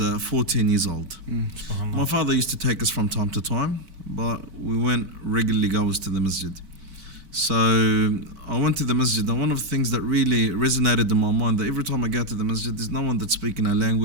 14 years old. My father used to take us from time to time, but we went regularly goers to the masjid. So I went to the masjid, and one of the things that really resonated in my mind, that every time I go to the masjid, there's no one that's speaking our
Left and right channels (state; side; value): late; left; 4.5 ms